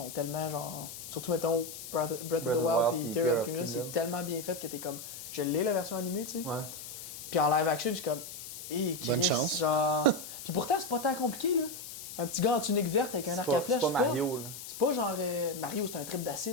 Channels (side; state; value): left; noise; hiss, 11 dB below the sound